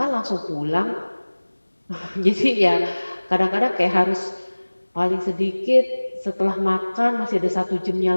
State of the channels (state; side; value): inverted; both; correlation -1.00